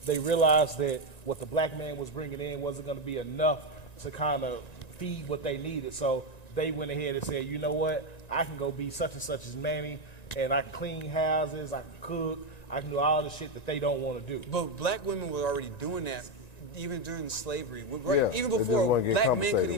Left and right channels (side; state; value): right; late; 1.9 ms